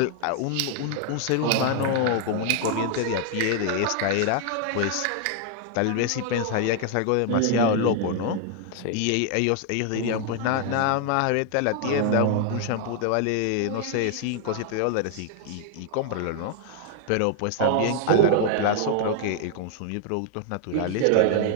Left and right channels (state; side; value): different; both; correlation 0.00